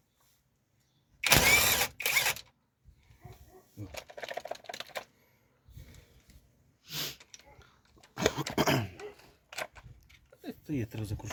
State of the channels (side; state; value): both; identical; correlation 1.00